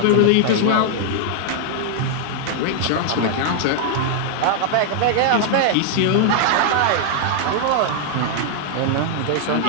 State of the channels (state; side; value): different; both; correlation 0.00